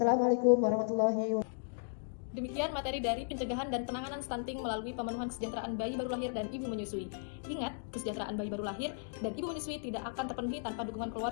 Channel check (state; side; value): silent; right; digital silence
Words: warahmatullahi wabarakatuh. Demikian materi dari pencegahan dan penanganan stunting melalui pemenuhan kesejahteraan bayi baru lahir dan ibu menyusui. Ingat, kesejahteraan bayi baru lahir dan ibu menyusui tidak akan terpenuhi tanpa dukungan